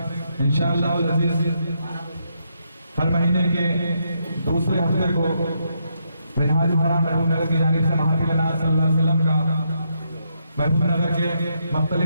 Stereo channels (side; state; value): both; inverted; correlation -0.78